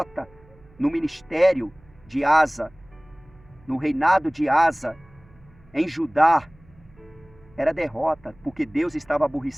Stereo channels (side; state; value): right; noise; hum, 28 dB below the sound